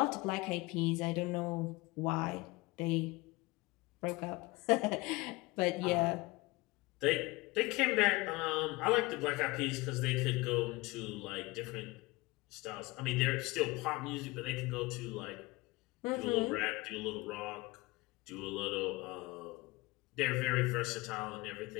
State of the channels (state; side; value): quieter; right; 22.5 dB